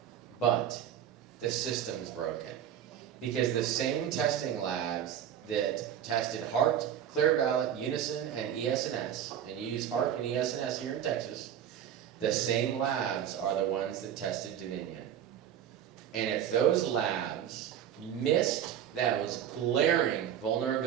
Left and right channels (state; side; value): quieter; left; 9.7 dB